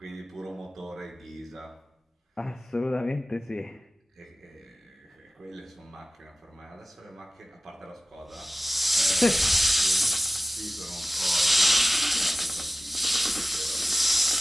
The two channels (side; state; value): both; normal; correlation 0.96